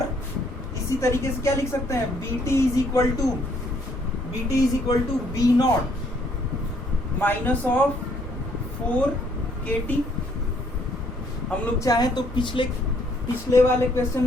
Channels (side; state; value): both; normal; correlation 0.66